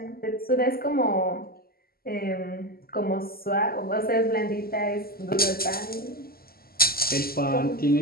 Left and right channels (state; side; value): late; right; 0.44 ms